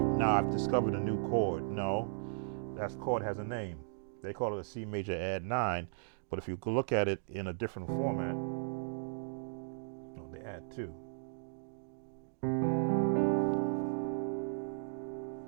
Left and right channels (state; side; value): silent; left; digital silence